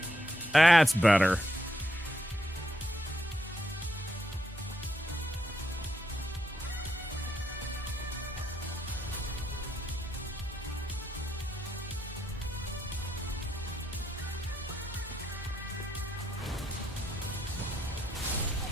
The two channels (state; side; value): normal; both; correlation 0.78